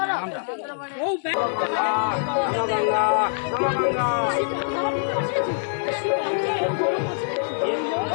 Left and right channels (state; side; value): silent; right; digital silence